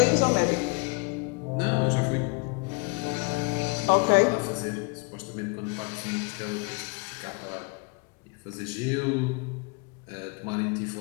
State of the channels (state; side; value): quieter; right; 30.4 dB